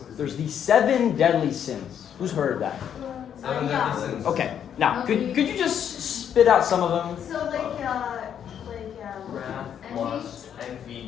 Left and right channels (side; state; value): right; quieter; 8.9 dB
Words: there's the 7 deadly sins. Who's heard of that? Okay. Now, could you just spit out some of them? So